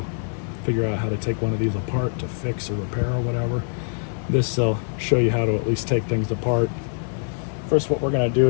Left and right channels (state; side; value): silent; right; 63 dB below the other